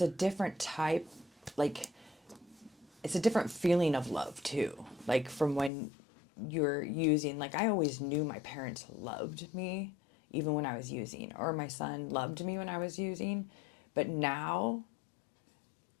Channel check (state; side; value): drops out; right; at 5.7 s